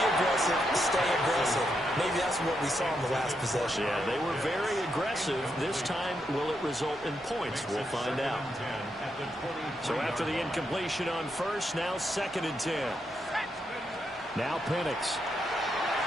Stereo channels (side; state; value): both; normal; correlation 0.82